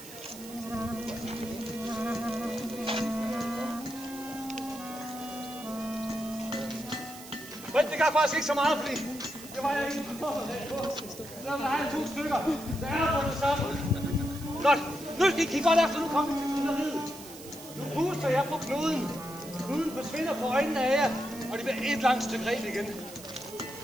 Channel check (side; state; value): right; noise; hiss, 16 dB below the sound